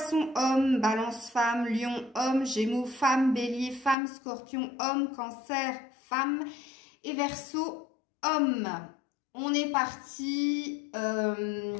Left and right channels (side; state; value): right; drops out; at 4.0 s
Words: homme, Balance femme, Lion homme, Gémeaux femme, Bélier femme, Scorpion homme, Cancer femme et Verseau homme. On est parti.